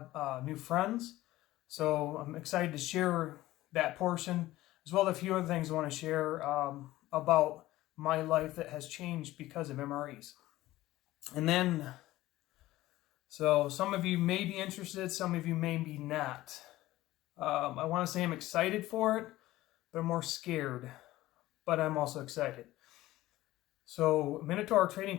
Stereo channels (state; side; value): quieter; right; 16.6 dB